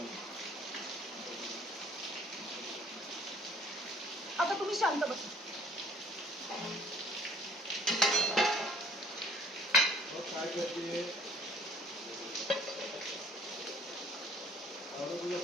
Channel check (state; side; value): normal; both; correlation 0.56